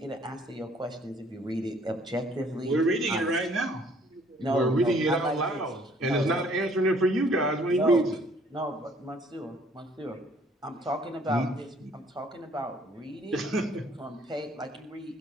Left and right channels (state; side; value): normal; both; correlation 0.60